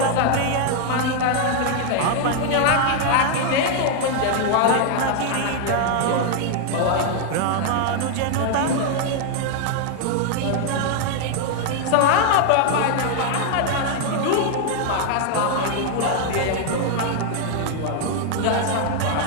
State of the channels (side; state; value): both; different; correlation 0.00